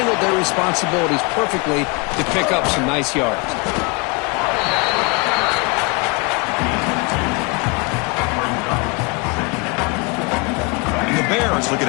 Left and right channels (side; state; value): right; quieter; 29.9 dB